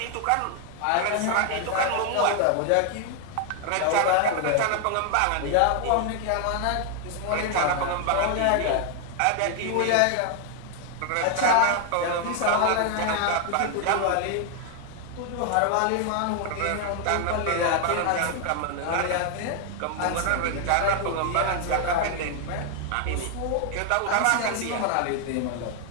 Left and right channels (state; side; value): different; both; correlation 0.00